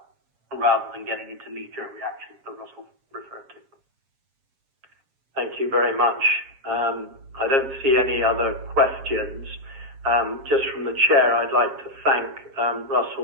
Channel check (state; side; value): late; left; 7.3 ms